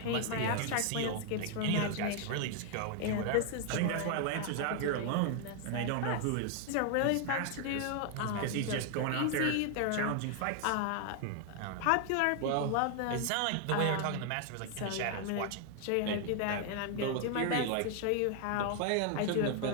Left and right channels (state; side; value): different; both; correlation 0.00